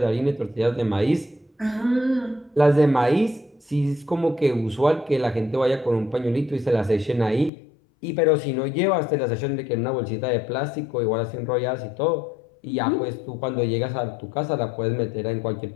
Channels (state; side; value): drops out; right; at 7.5 s